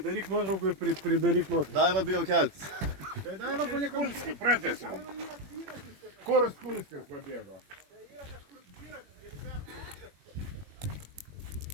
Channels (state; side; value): late; left; 21 ms